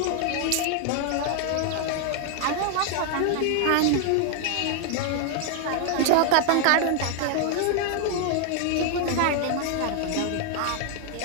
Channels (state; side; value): different; both; correlation 0.00